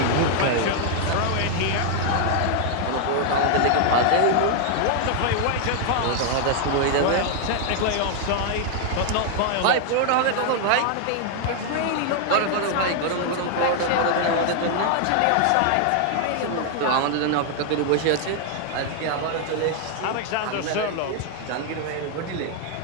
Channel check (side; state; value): both; different; correlation 0.00